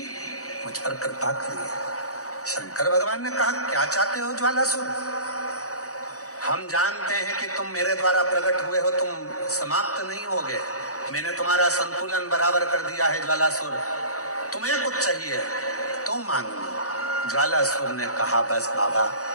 मुझ पर कृपा करिए। शंकर भगवान ने कहा क्या चाहते हो ज्वालासुर? हम जानते हैं कि तुम मेरे द्वारा प्रकट हुए हो, तुम समाप्त नहीं होगे। मैंने तुम्हारा संतुलन बराबर कर दिया है ज्वालासुर, तुम्हें कुछ चाहिए तो मांगो। ज्वालासुर ने कहा बस बाबा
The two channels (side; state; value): right; late; 0.65 ms